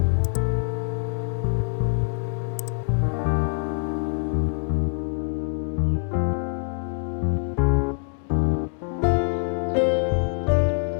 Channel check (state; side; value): silent; right; 56 dB below the other